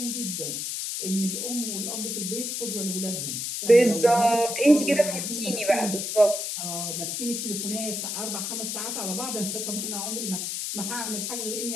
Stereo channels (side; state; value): left; noise; hiss, 3 dB below the sound